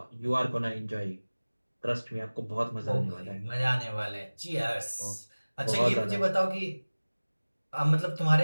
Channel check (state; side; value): inverted; both; correlation -1.00